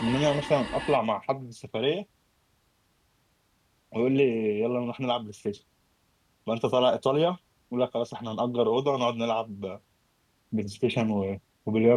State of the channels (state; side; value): identical; both; correlation 1.00